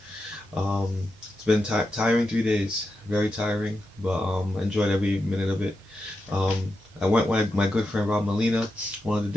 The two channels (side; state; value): both; normal; correlation 0.88